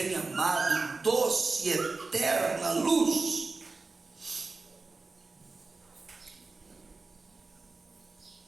amado, doce e eterna luz.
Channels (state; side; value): quieter; left; 3.8 dB